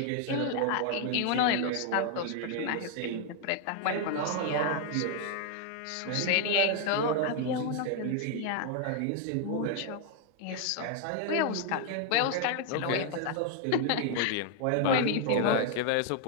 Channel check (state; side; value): different; both; correlation 0.00